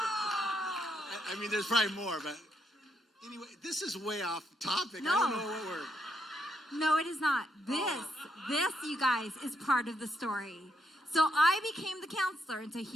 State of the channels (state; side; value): normal; both; correlation 0.78